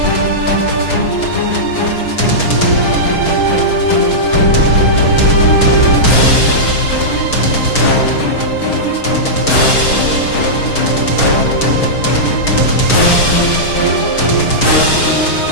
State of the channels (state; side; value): late; right; 6.3 ms